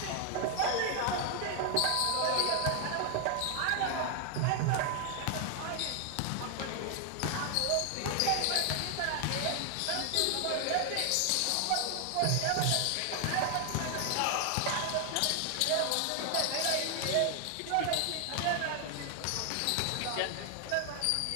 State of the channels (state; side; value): different; both; correlation 0.00